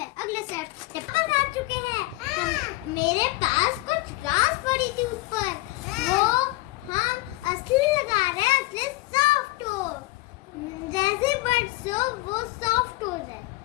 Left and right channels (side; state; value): right; quieter; 20.9 dB